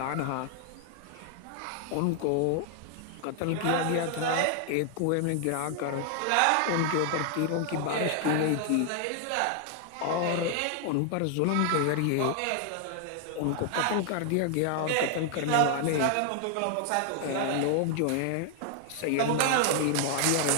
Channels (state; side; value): different; both; correlation 0.00